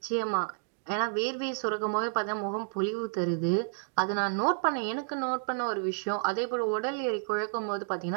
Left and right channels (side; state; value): left; silent; digital silence